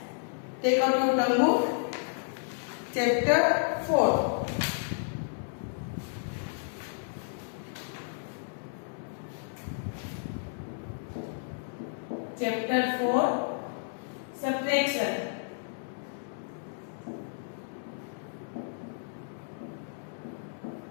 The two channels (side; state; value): right; silent; digital silence